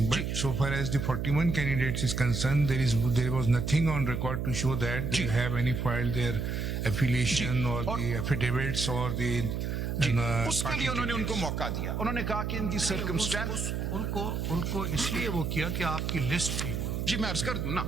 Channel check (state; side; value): noise; right; hum, 2 dB below the sound